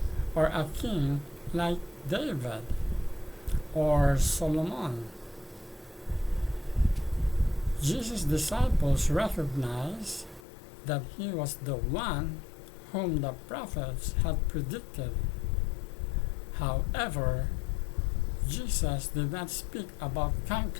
or a king like David or Solomon. Jesus' disciples recognized that he was the one whom the prophets had predicted. However, Jesus did not speak about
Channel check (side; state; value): right; drops out; at 10.4 s